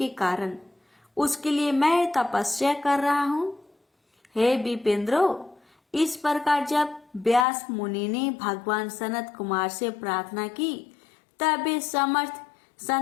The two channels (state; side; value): drops out; right; at 7.5 s